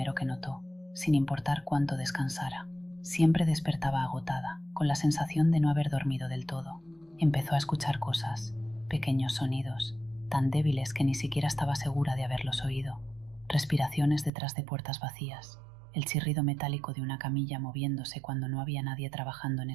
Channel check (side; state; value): left; drops out; at 14.3 s